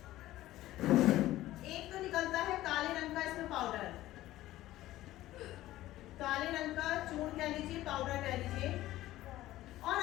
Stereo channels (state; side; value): quieter; right; 15.4 dB